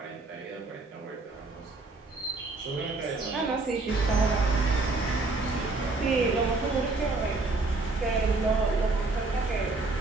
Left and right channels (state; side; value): quieter; left; 3.4 dB